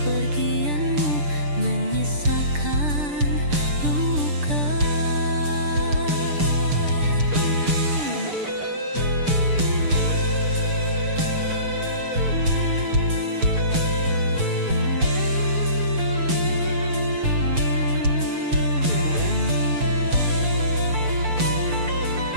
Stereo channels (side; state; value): left; late; 6.8 ms